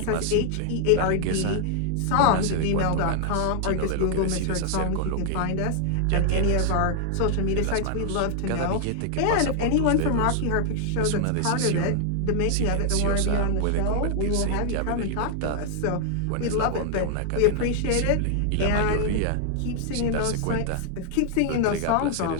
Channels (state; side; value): different; both; correlation 0.00